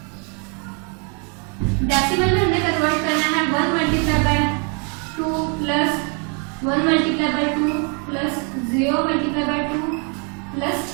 डेसिमल में हमने कन्वर्ट करना है 1 multiply by 2 plus 1 multiply by 2 plus 0 multiply by 2 plus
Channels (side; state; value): left; quieter; 37.2 dB